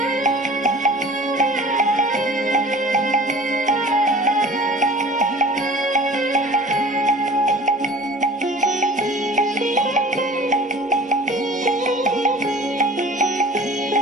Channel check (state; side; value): normal; both; correlation 0.43